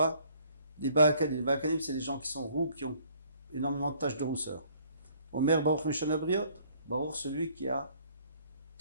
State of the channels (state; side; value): inverted; both; correlation -0.61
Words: les Ba'akanim. Les Ba'akanim, c'est les gens qui sont roux, qui ont énormément de taches de rousseur. Omer Baruch Meshana Briot, Baruch, celui qui a